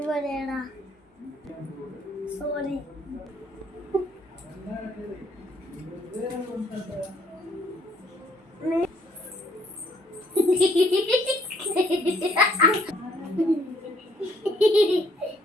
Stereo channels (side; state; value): both; normal; correlation 0.65